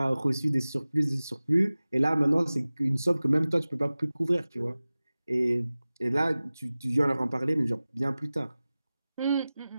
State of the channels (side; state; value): both; inverted; correlation -0.97